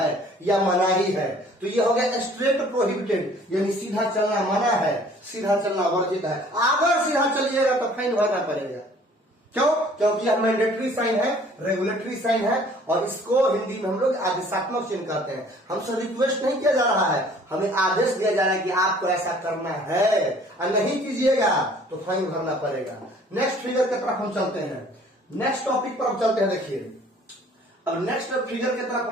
या मनाही है। तो ये हो गया स्ट्रेट प्रोहिबिटेड, यानी सीधा चलना मना है, सीधा चलना वर्जित है। अगर सीधा चलिएगा तो फाइन भरना पड़ेगा। क्यों? क्योंकि यह मैंडेटरी साइन है, रेगुलेटरी साइन है, और इसको हिंदी में हम लोग आदेशात्मक चिन्ह कहते हैं। हमसे रिक्वेस्ट नहीं किया जा रहा है, हमें आदेश दिया जा रहा है कि आपको ऐसा करना है, और नहीं कीजिएगा तो फाइन भरना पड़ेगा। नेक्स्ट फिगर की तरफ हम चलते हैं, नेक्स्ट टॉपिक पर हम चलते हैं। देखिए अब नेक्स्ट फिगर की तरफ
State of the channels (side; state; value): both; normal; correlation 0.54